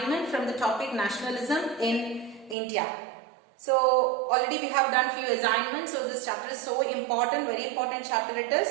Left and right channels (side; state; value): left; drops out; at 2.6 s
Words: from the topic nationalism in India. So already we have done few assignments, so this chapter is so important, very important chapter it is.